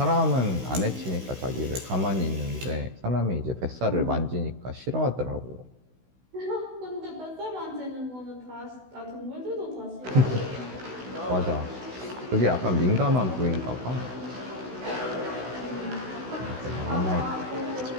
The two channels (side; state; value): left; late; 16 ms